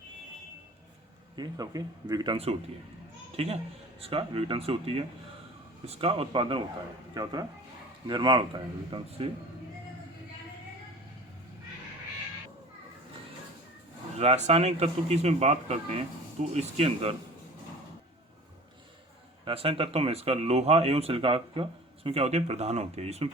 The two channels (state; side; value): normal; both; correlation 0.41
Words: ये सबके विघटन से होती है। ठीक है, इसका विघटन से होती है, इसका उत्पादन होता है। क्या होता है? निर्माण होता है विघटन से। रासायनिक तत्व की इसमें बात करते हैं तो इसके अंदर रासायनिक तत्वों में इसका लोहा एवं सिलिका का इसमें क्या होती है? प्रधान होती है। इसमें